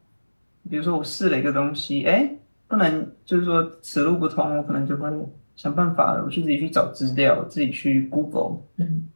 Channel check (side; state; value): both; inverted; correlation -1.00